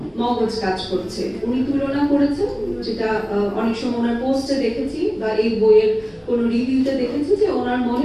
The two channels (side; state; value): both; identical; correlation 1.00